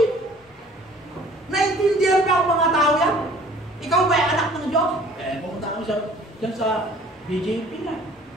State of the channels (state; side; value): normal; both; correlation 0.52